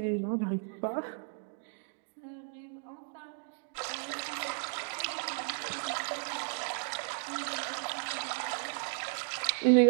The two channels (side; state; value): left; silent; 55 dB below the other